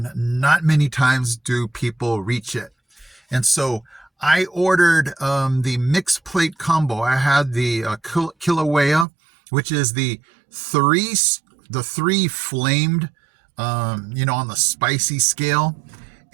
not many times do people reach it. And so I ordered the mixed plate combo. I had the Kilauea, which is the three flamed, you know, on the spicy scale.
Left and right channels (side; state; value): left; drops out; at 9.1 s